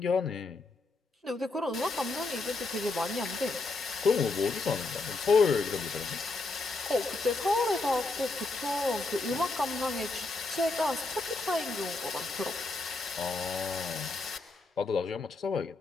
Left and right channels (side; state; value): right; quieter; 3.5 dB